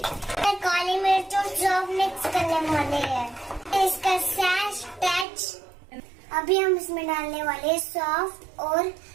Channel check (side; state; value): left; drops out; at 5.2 s